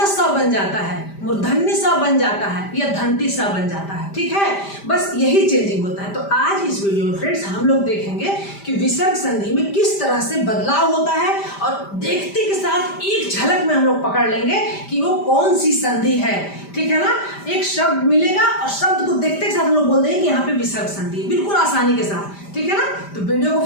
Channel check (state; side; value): late; right; 5.0 ms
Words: सा बन जाता है, मूर्धन्य सा बन जाता है, या धंती सा बन जाता है। ठीक है, बस यही चेंजिंग होता है। तो आज इस वीडियो में फ्रेंड्स हम लोग देखेंगे कि विसर्ग संधि में किस तरह से बदलाव होता है, और देखते के साथ एक झलक में हम लोग पकड़ लेंगे कि वो कौन सी संधि है। ठीक है ना, एक शब्द मिलेगा और शब्द को देखते के साथ हम लोग बोल देंगे कि यहाँ पे विसर्ग संधि है, बिल्कुल आसानी के साथ। ठीक है ना, तो वीडियो को